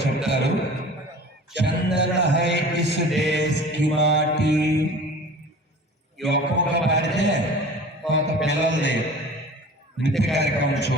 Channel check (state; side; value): normal; both; correlation 0.41